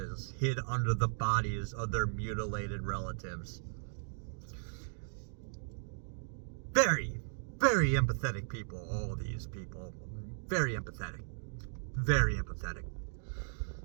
hid under the bodies of their mutilated relatives. Very, very empathetic people, all these people. Very empathetic. Very empathetic.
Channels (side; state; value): left; silent; digital silence